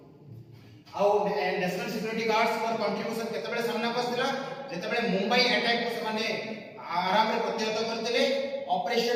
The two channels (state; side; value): identical; both; correlation 1.00